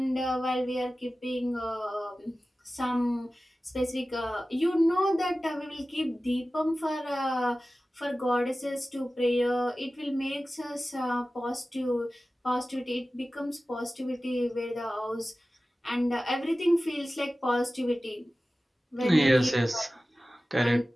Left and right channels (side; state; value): both; normal; correlation 0.96